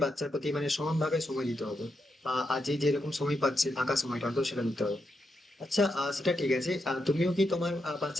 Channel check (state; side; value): normal; both; correlation 0.84